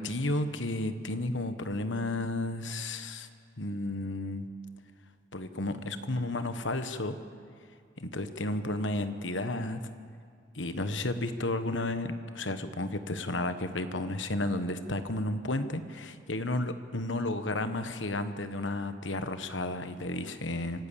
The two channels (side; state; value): both; normal; correlation 0.42